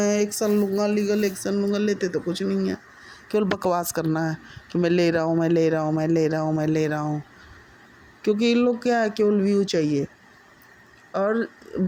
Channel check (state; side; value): identical; both; correlation 1.00